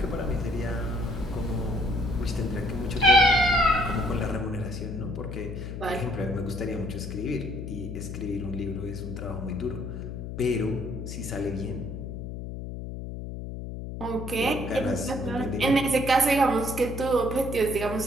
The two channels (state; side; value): noise; left; hum, 7 dB below the sound